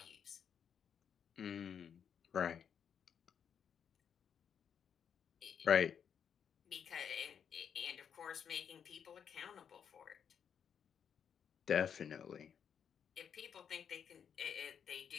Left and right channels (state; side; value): quieter; right; 7.8 dB